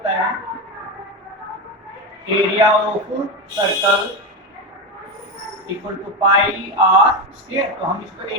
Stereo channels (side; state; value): both; normal; correlation 0.14